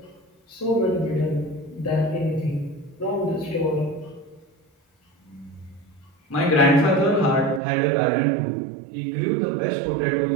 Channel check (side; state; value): left; drops out; at 7.6 s